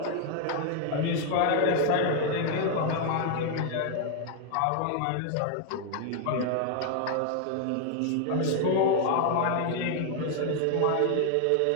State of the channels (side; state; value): both; different; correlation 0.00